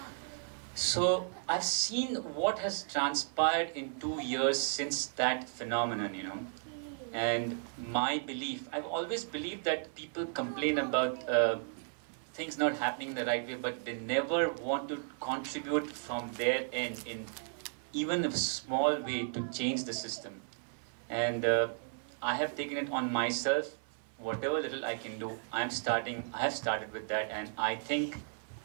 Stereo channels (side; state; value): left; silent; 55 dB below the other